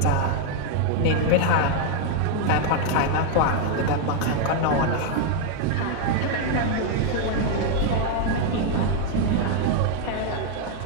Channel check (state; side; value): different; both; correlation 0.00